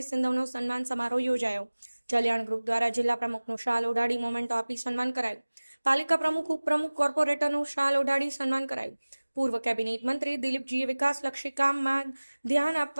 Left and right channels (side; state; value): both; inverted; correlation -1.00